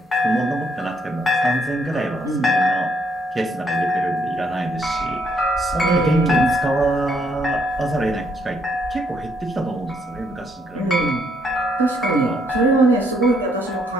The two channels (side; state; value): both; normal; correlation 0.71